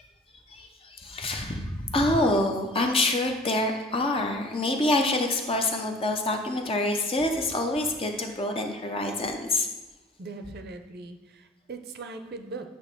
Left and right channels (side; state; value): both; normal; correlation 0.46